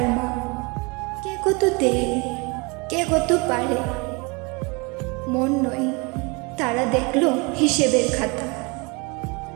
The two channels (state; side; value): quieter; left; 29.0 dB